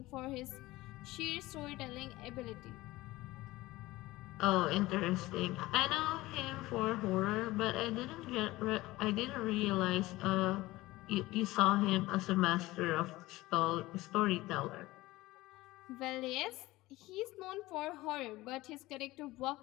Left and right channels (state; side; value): quieter; right; 18.8 dB